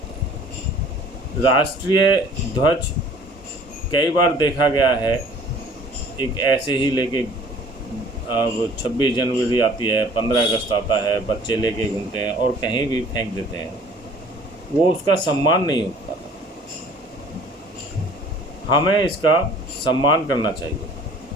राष्ट्रीय ध्वज कई बार देखा गया है एक ऐसे ही लेके अब 26 जनवरी आती है, 15 अगस्त आता है, बच्चे लेके घूमते हैं और कहीं भी फेंक देते हैं, वो उसका सम्मान नहीं होता। हमें इसका सम्मान करना चाहिए।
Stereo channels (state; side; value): normal; both; correlation 0.51